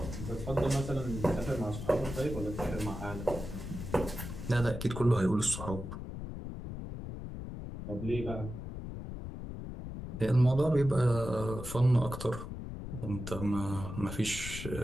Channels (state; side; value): noise; left; rumble, 8 dB below the sound